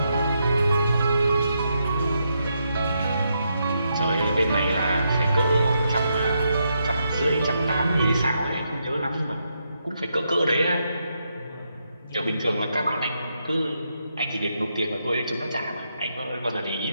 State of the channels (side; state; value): both; inverted; correlation -0.81